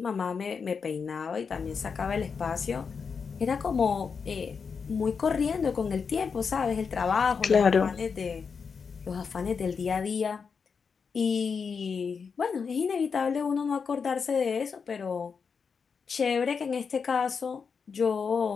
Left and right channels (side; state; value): right; quieter; 5.8 dB